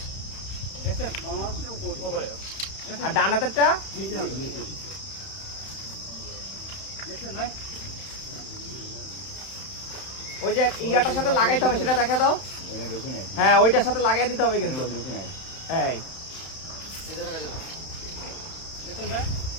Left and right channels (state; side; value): late; right; 31 ms